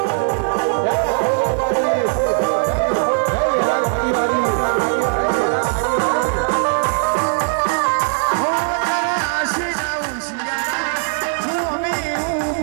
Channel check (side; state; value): left; silent; digital silence